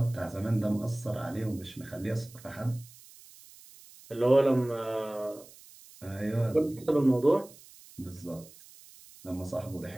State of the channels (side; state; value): right; noise; hiss, 22 dB below the sound